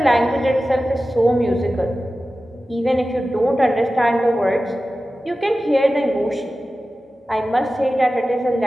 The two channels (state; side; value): normal; both; correlation 0.95